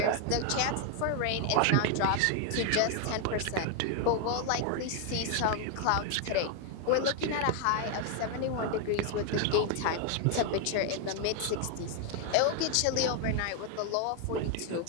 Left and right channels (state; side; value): different; both; correlation 0.01